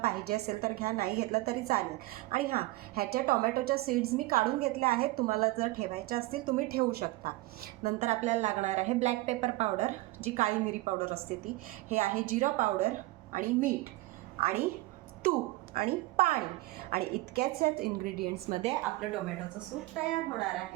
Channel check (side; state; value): left; quieter; 19.6 dB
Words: पाहिजे असेल तर घ्या, नाही घेतलं तरी चालेल. आणि हां, ह्याच्या टोमॅटोच्या सीड्स मी काढून घेतल्या आहेत. तुम्हाला जर ठेवायच्या असतील तुम्ही ठेवू शकता. नंतर आपल्याला लागणार आहे ब्लॅक पेपर पावडर, जी काळी मिरी पावडर असते ती. हे आहे जिरा पावडर आणि मीठ आणि तूप आणि पाणी. आणि इतक्याच इन्ग्रेडियंट्समध्ये आपलं टोमॅटोचं सूप तयार होणार